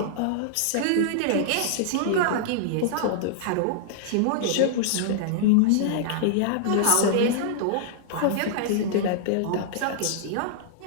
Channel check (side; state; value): both; different; correlation -0.01